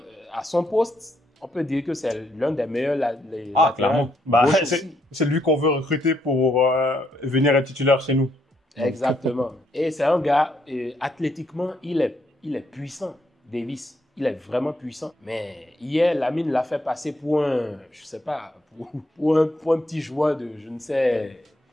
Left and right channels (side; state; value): both; normal; correlation 0.74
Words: à son poste, on peut dire que c'est l'un des meilleurs clairement. C'est lui qu'on veut recruter pour venir être titulaire chez nous. Exactement. Et c'est un gars, athlétiquement, il est puissant, Davis. Il est vraiment puissant. Mais hier, Lamine l'a fait passer pour un, je sais pas, pour un petit joueur de, je ne sais.